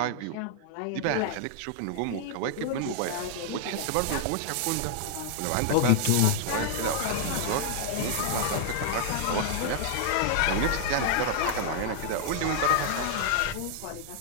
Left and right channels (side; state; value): both; different; correlation -0.01